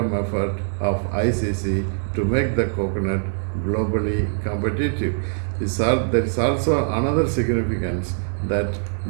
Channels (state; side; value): silent; left; digital silence